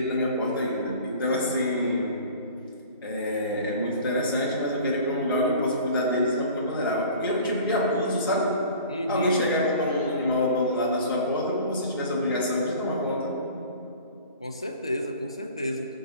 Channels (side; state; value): both; inverted; correlation -0.43